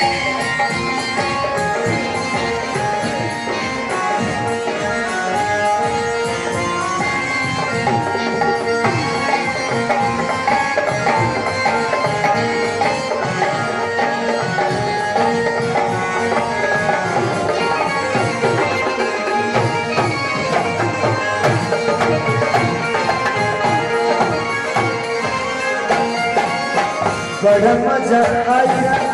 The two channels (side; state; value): both; identical; correlation 1.00